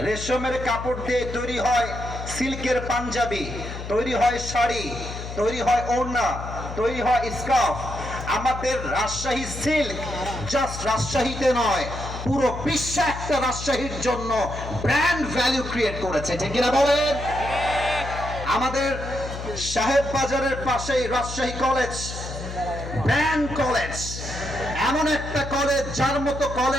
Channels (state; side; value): noise; left; hum, 8 dB below the sound